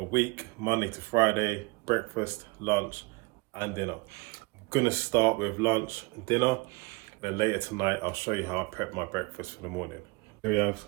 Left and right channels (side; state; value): left; quieter; 25.7 dB